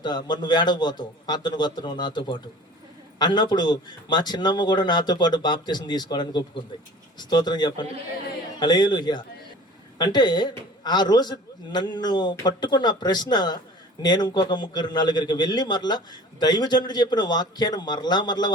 మరి నువ్వు ఏడకపోతావు, అతను వస్తున్నావు నాతో పాటు అన్నప్పుడు మా చిన్నమ్మ కూడా నాతో పాటు బాప్తిజం తీసుకోవడానికి ఒప్పుకుంది. స్తోత్రం చెప్పండి. హల్లెలూయా. అంటే ఆ రోజు నన్ను పట్టుకున్న ప్రశ్న, నేను ఇంకొక 3-4 వెళ్ళి మరలా దైవజనుడు చెప్పిన వాక్యాన్ని మరలా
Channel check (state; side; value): normal; both; correlation 0.44